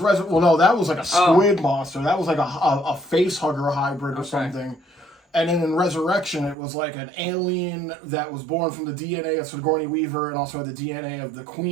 that was like a squid monster. That was like a face hugger hybrid or something. And then in Resurrection, it was like an alien that was born from the DNA of Sigourney Weaver and also had the DNA of the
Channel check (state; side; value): drops out; left; at 6.6 s